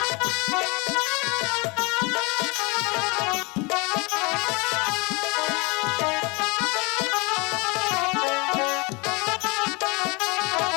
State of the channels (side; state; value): right; quieter; 27.8 dB